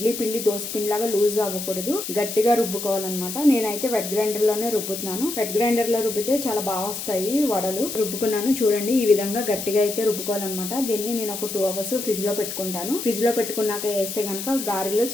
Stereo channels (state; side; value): noise; left; hiss, 6 dB below the sound